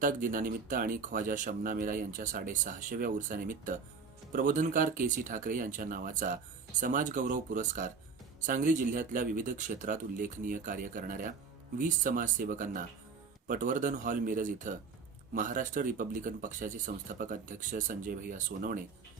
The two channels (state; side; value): quieter; left; 5.2 dB